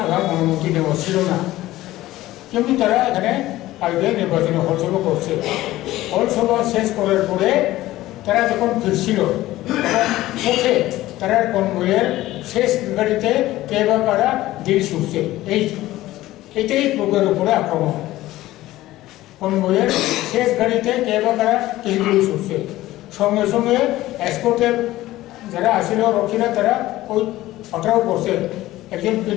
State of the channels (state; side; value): quieter; right; 16.2 dB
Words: আগাম অনুমতি নেওয়া ছিল না, কিন্তু তারা এখানে কালকে নির্বাচনী হলসভা করছে। হলসভা শেষ করার পরে তারা যখন ফিরছিল তখন পথে তারা কনভয়ের শেষ গাড়িতে কে বা কারা দিল ছুটছে। এইটাই লোকের উপরে আক্রমণ। কনভয়ের শেষ গাড়িতে কে বা কারা দিল ছুটছে, সঙ্গে সঙ্গে এসকর্টের যারা আসিল রক্ষীরা তারা ওই পাকড়াও করছে একজন